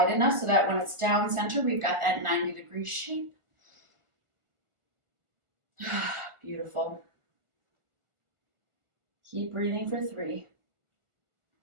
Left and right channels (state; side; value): late; left; 1.4 ms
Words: enough so that when it's down center, we've got that 90-degree shape. Beautiful. Keep breathing for 3.